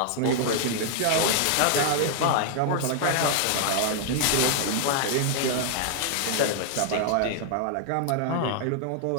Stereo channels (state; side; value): different; both; correlation 0.00